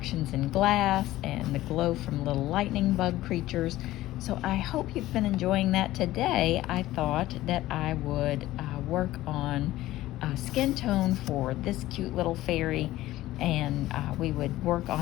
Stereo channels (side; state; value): right; quieter; 15.9 dB